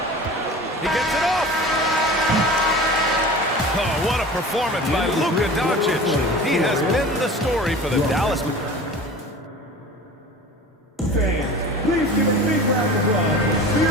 He gets it off. Oh, what a performance by Luka Doncic. He has been the story for the Dallas. Please give a big round of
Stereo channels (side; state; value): both; normal; correlation 0.38